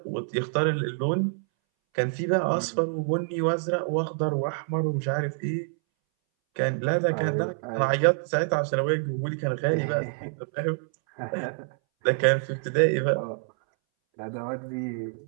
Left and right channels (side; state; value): left; silent; 60 dB below the other